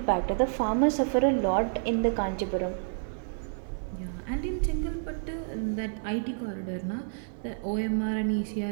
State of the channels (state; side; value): silent; left; digital silence